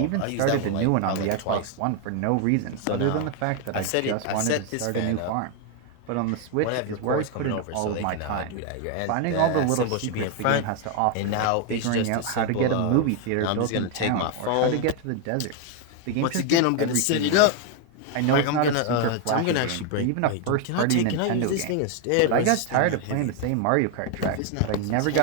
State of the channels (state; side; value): different; both; correlation 0.01